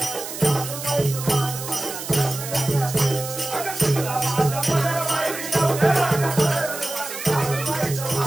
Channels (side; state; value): right; noise; hiss, 8 dB below the sound